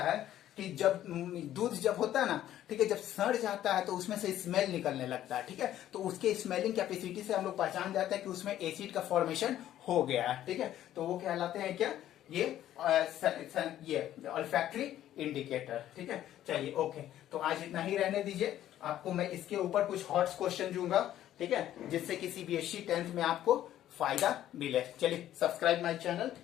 है कि जब दूध जब होता है ना, ठीक है, जब सड़ जाता है तो उसमें से स्मेल निकलने लगता है, ठीक है, तो उसके स्मेलिंग कैपेसिटी से हम लोग पहचान जाते हैं कि उसमें एसिड का फॉर्मेशन हो गया है, ठीक है, तो वो कहलाते हैं क्या, ये ऑल्फैक्टरी इंडिकेटर, ठीक है। चलिए ओके, तो आज इतना ही रहने दीजिए, आपको मैं इसके ऊपर कुछ हॉट क्वेश्चन दूंगा, ठीक है, जिससे कि सीबीएसई 10th में आपको फायदा मिले। चलिए subscribe my channel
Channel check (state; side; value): quieter; right; 12.3 dB